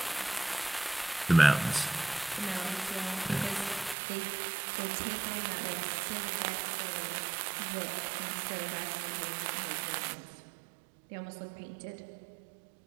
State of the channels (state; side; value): drops out; left; at 4.0 s